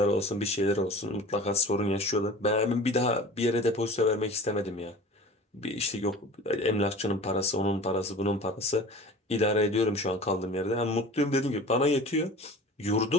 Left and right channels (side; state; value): both; normal; correlation 0.39